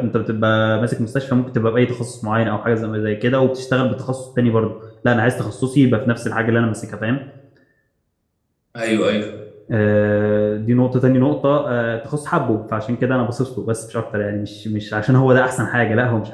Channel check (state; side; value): identical; both; correlation 1.00